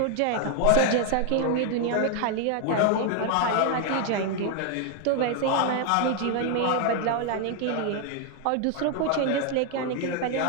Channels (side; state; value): both; different; correlation 0.01